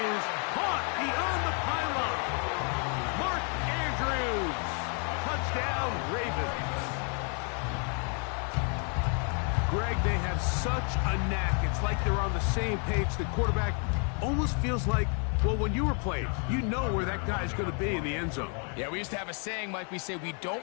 is caught beyond the pylon. Mark Andrews. Touchdown, Ravens. Greg, they have such a knack. It's like they're on the same page. The quarterback almost feels like, well, when you were playing, you know where that guy's going to be in the end zone. Yeah, we used to have a saying, Mike. We say we don't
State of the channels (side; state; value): right; quieter; 39.4 dB